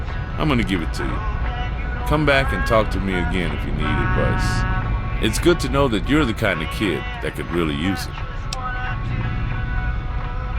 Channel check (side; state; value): both; identical; correlation 1.00